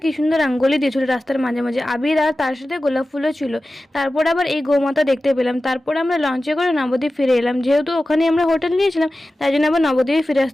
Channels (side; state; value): both; normal; correlation 0.95